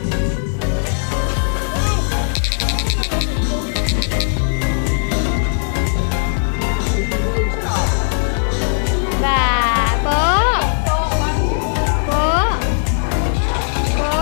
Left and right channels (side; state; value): right; silent; digital silence